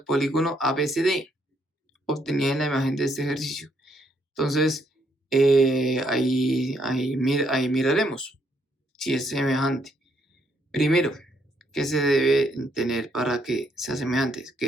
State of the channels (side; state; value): both; normal; correlation 0.73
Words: polígono ABCD obtenida en la imagen de este ejercicio? Entonces, ahí miraremos si es semejante. Primero, ¿qué se debe tener para que sea semejante?